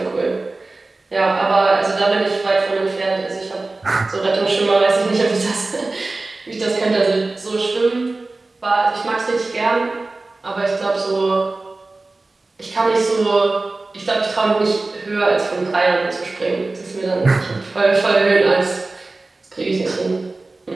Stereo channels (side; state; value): left; quieter; 3.3 dB